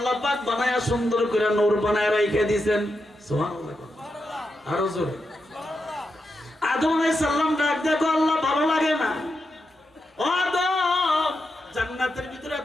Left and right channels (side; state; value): both; normal; correlation 0.86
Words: পাক বানায়া সুন্দর করে নূর বানায়া রেখে দিয়েছেন। সুবহানাল্লাহ। আরো জোরে। আদম আলাইহিস সালাম ডাক দেখো, আল্লাহ ভালো লাগে না? ও আদম, জান্নাতের ভিতরে